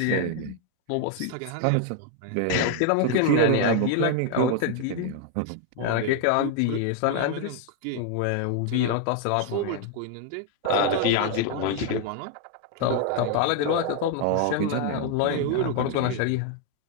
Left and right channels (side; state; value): both; different; correlation 0.00